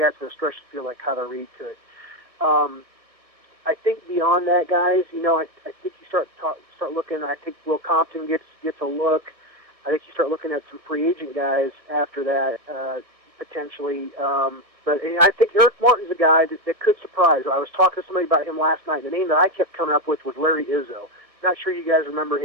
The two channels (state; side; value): late; left; 1.6 ms